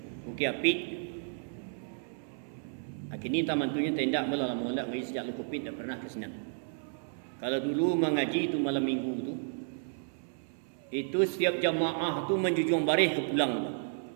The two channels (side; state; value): left; silent; 56 dB below the other